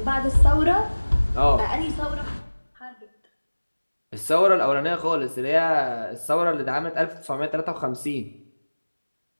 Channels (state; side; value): inverted; both; correlation -1.00